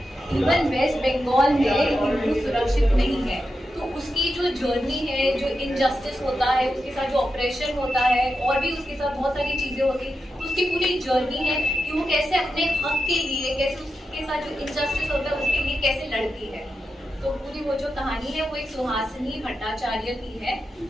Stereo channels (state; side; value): normal; both; correlation 0.89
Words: इवन वेस्ट बंगाल में हिंदू सुरक्षित नहीं है। तो उसकी जो जर्नी है, जो इनजस्टिस होता है, उसके साथ जो ऑपरेशन होता है और भी उसके साथ बहुत सारी चीजें होती हैं, तो उसकी पूरी जर्नी है कि वो कैसे अपने हक के लिए, कैसे उसके साथ जो इनजस्टिस होता है उसके लिए कैसे लड़ती है। तो पूरी वो जो कहानी है वो एक सुहासिनी भट्टाचार्य की है